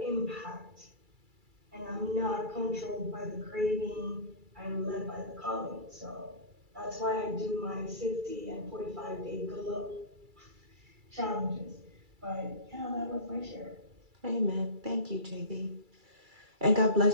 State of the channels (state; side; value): late; left; 2.3 ms